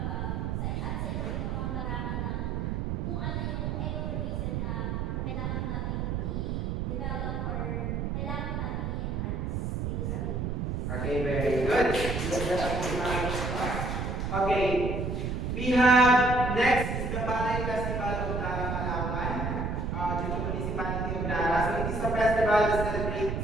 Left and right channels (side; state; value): right; noise; rumble, 1 dB below the sound